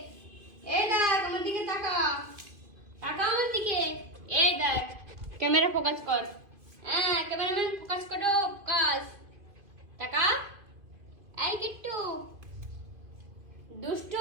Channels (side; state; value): left; late; 2.5 ms